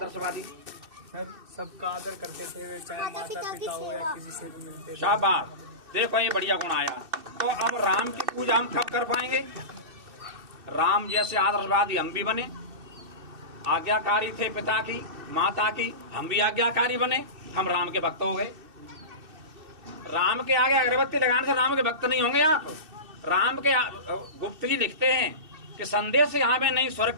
सर, सबका आदर करते थे, चाहे माता पिता हो या किसी से भी मिलते थे। शाबाश, देखो ये बढ़िया गुण आया। तो अब राम की पूजा हम कब कर पाएंगे? राम जैसे आदर्शवादी हम भी बने, आज्ञाकारी थे पिता की माता की, हम भी आज्ञाकारी बने, हम राम के भक्त हो गए। राम के आगे अगरबत्ती लगाने से राम के भक्त नहीं होंगे आप। राम के गुप्त जी लिखते हैं कि संदेश यहाँ में नहीं स्वर्ग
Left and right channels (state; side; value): late; left; 2.6 ms